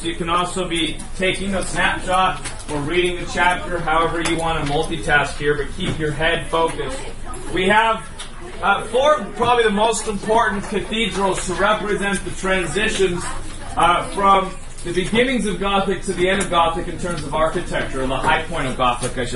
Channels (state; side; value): identical; both; correlation 1.00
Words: You can also be taking a snapshot or reading the chapter, however you want to multitask here, but keep your head focused. We have four, probably the most important cathedrals to represent the transitions from the beginnings of Gothic to the end of Gothic in terms of architecture, or the high point of Gothic, I